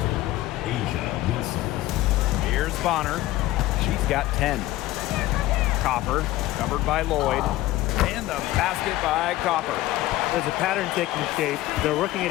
Asia Wilson. Here's Bonner. She's got 10. Copper covered by Lloyd. And the basket by Copper. There's a pattern taking shape. They're working it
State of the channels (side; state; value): right; quieter; 16.4 dB